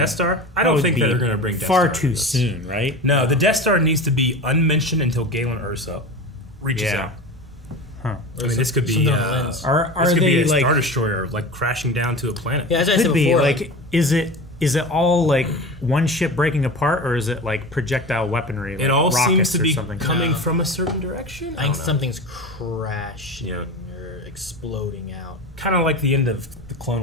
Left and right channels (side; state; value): both; normal; correlation 0.30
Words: Star? I don't think that they're going to bring Death far Star too soon, right? No, the Death Star needs to be unmentioned until Galen Erso reaches out. Huh. I mean, this could be are this could they be a like Star Destroyer like crashing down to a planet? Yeah, as I could said be before, like is it all like one ship breaking apart, or is it like projectile weaponry? Like it all seems to be something? coming from a certain direction. I think something's crashing or exploding out. Kind of like the end of the